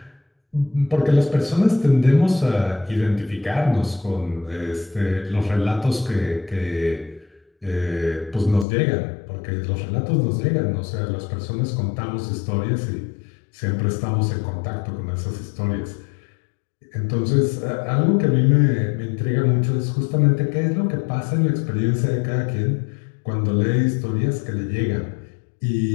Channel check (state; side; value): drops out; right; at 8.7 s